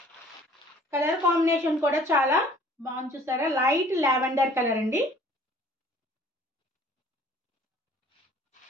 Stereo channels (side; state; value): both; normal; correlation 0.53